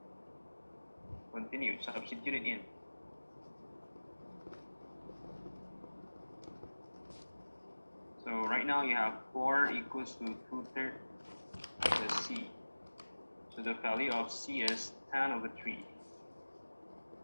Continue, substitute it in. So right now you have 4 equals to 2/3 the C. So the value of C is 10/3.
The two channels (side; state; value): both; inverted; correlation -1.00